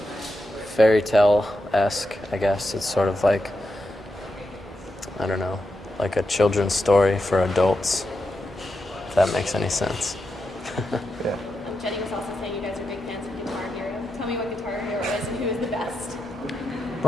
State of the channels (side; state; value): both; normal; correlation 0.87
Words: fairy tale-esque, I guess. It's sort of like, I don't know, like a children's story for adults, if that makes any sense. Yeah. Jenny was also saying you guys are big fans of Guitar Hero. Tell me what Guitar Hero is and who is the best.